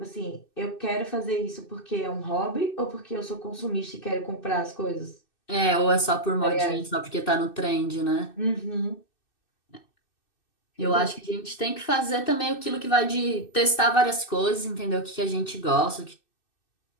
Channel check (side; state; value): right; late; 2.6 ms